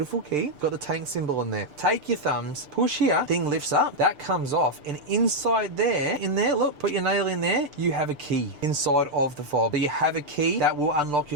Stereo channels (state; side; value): late; left; 6.8 ms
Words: key. Got the Tank symbol in there. Take your thumbs, push here, thing lifts up, that comes off. And inside there, look, put your nail in there, you have a key inside of the fob. So you have a key that will unlock